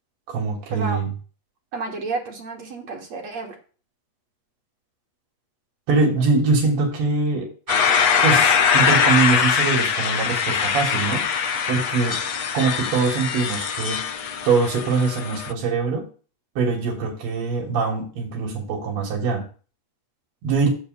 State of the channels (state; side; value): late; left; 8.2 ms